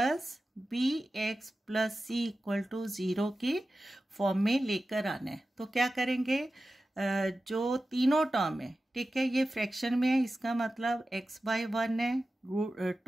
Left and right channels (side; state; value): both; normal; correlation 0.94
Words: bx + c = 0 की फॉर्म में लेकर आना है। तो क्या करेंगे, जो तीनों टर्म है, ठीक है, ये फ्रैक्शन में है, इसका मतलब x/1 है,